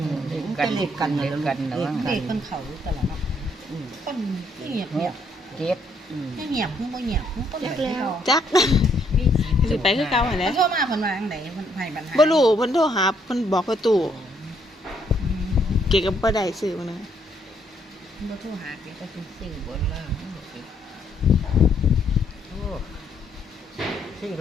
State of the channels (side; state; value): both; normal; correlation 0.70